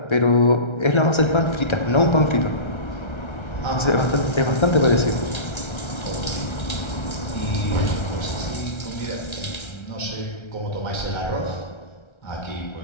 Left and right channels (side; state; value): right; late; 1.3 ms